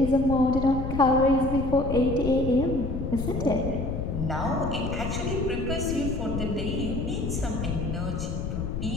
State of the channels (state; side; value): noise; left; rumble, 3 dB below the sound